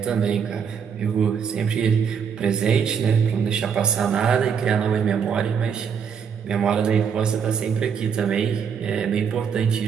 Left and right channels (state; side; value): quieter; left; 7.0 dB